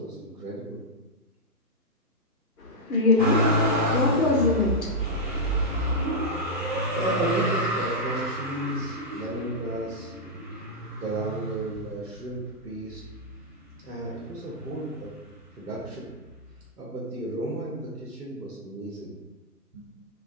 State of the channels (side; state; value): both; normal; correlation -0.06